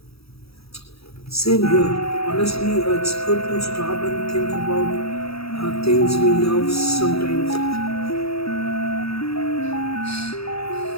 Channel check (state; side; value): late; right; 0.77 ms